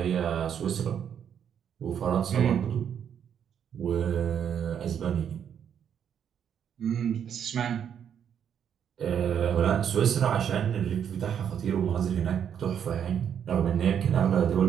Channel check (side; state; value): left; quieter; 8.5 dB